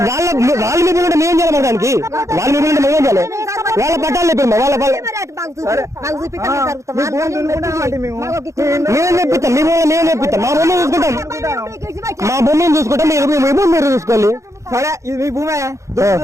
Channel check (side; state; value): left; late; 0.15 ms